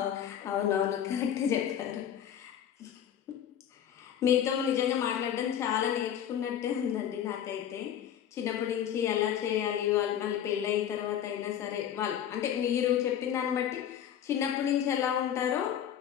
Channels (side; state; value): right; quieter; 9.8 dB